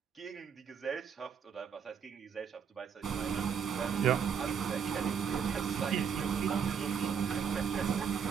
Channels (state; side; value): quieter; left; 7.1 dB